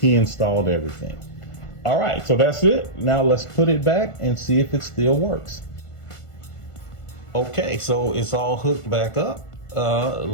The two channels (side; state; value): right; late; 1.5 ms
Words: installed everything. All right, so that's it. Now let's put it back and see if it still works. Okay, so it's all hooked back up.